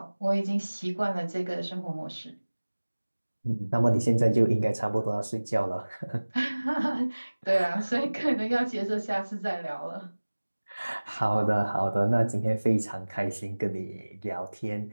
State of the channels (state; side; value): inverted; both; correlation -1.00